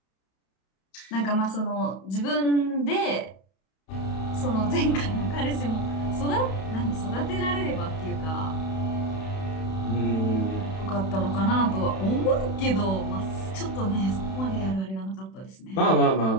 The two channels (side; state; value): right; late; 31 ms